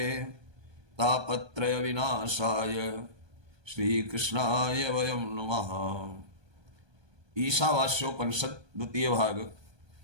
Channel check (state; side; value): late; left; 1.2 ms